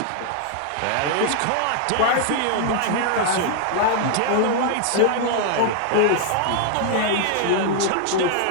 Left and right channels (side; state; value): both; different; correlation 0.00